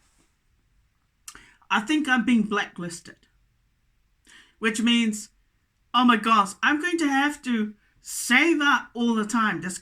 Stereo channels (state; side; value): identical; both; correlation 1.00